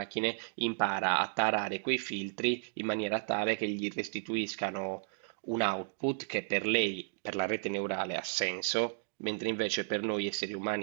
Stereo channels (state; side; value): silent; left; digital silence